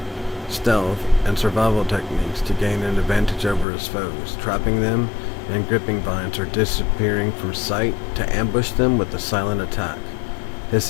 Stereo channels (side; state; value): right; drops out; at 3.7 s